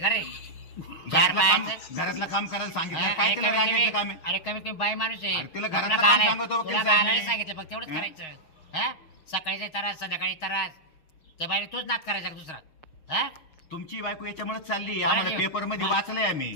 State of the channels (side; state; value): right; late; 6.3 ms